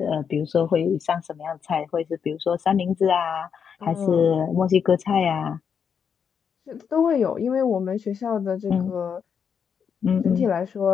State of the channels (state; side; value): quieter; right; 7.0 dB